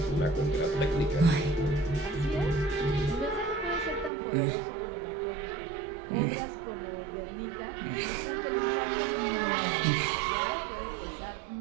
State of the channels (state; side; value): drops out; left; at 4.1 s